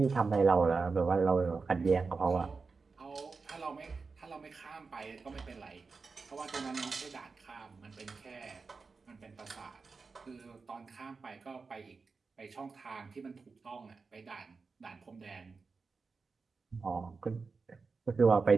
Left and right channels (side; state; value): left; quieter; 4.5 dB